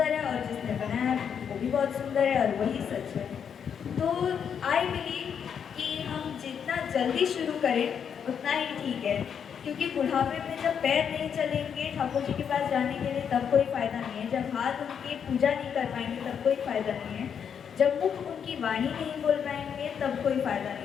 है और जिसने बनाया है वो भी बहुत सुंदर है और वही सच है। तो आई बिलीव कि हम जितना जल्दी शुरू करें उतना ही ठीक है, क्योंकि बुढ़ापे में जब पैर नहीं चलेंगे ठाकुर जी के पास जाने के लिए तब कोई फ़ायदा नहीं है, जब हाथ उनकी पूजा नहीं कर पाएंगे तब कोई फ़ायदा नहीं है, जब मुख उनकी वाणी नहीं बोल पाएंगे तब कोई फ़ायदा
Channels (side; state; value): right; quieter; 7.6 dB